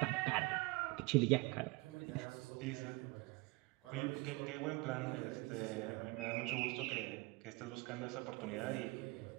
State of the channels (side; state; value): left; quieter; 23.9 dB